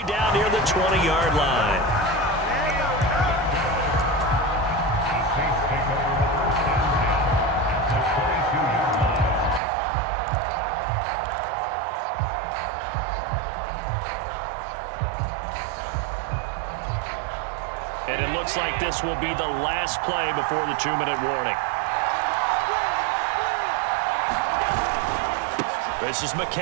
down near the 20-yard line. And it looks like this will be the last play before the 2-minute warning. This is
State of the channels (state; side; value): drops out; left; at 9.6 s